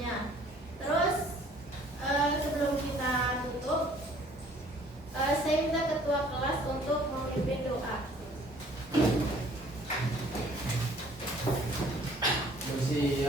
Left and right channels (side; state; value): both; normal; correlation 0.56